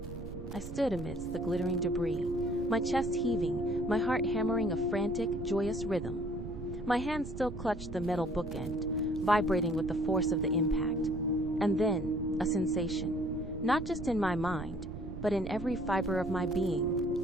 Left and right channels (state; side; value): noise; right; rumble, 9 dB below the sound